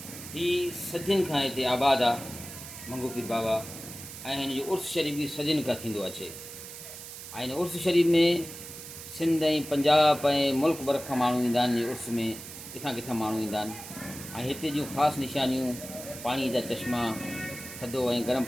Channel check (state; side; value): noise; right; hiss, 12 dB below the sound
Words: ही सदियुनि खां हिते आबाद आहे मंगो पीर बाबा, ऐं हिन जो उर्स शरीफ़ बि सदियुनि खां थींदो अचे। ऐं हिन उर्स शरीफ़ में सिंध ऐं पंजाब ऐं मुल्क भर खां माण्हू ईंदा आहिनि। उर्स में किथां किथां माण्हू ईंदा आहिनि ऐं हिते जूं ख़ासि निशानियूं पाणी जा चश्मा, थधो ऐं गरम